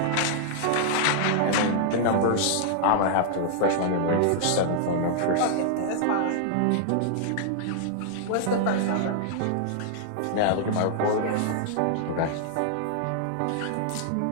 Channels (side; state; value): both; different; correlation -0.01